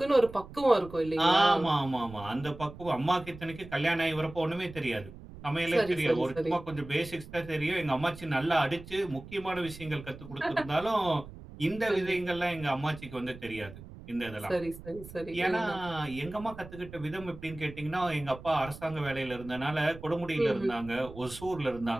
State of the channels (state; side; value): noise; right; rumble, 15 dB below the sound